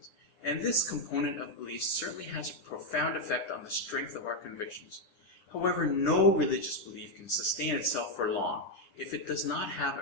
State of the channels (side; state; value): right; late; 9.9 ms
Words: and this component of belief certainly has a profound effect on the strength of our convictions. However, no religious belief can sustain itself for long if it does not have